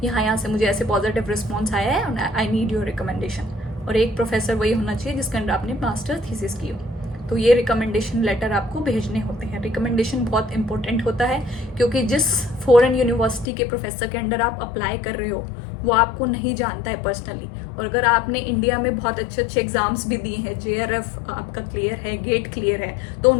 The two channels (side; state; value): right; drops out; at 13.5 s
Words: यहाँ से मुझे ऐसे पॉजिटिव रिस्पॉन्स आया है, आई नीड योर रिकमेंडेशन। और एक प्रोफेसर वही होना चाहिए जिसके अंडर आपने मास्टर थीसिस की हो। तो ये रिकमेंडेशन लेटर आपको भेजने होते हैं। रिकमेंडेशन बहुत इंपॉर्टेंट होता है क्योंकि जिस फॉरेन यूनिवर्सिटी के प्रोफेसर के अंडर आप अप्लाई कर रहे हो वो आपको नहीं जानता है पर्सनली। और अगर आपने इंडिया में बहुत अच्छे अच्छे एग्जाम्स भी दिए हैं, JRF आपका क्लियर है, गेट क्लियर है, तो